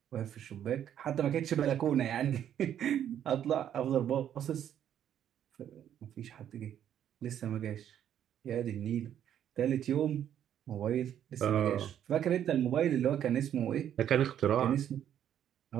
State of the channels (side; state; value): left; quieter; 10.1 dB